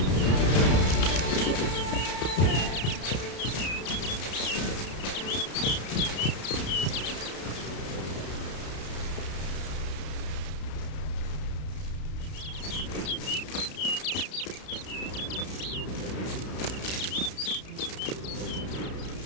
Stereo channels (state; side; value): late; right; 32 ms